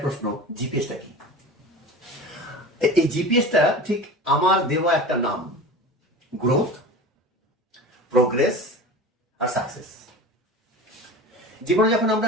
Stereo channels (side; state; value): both; normal; correlation 0.34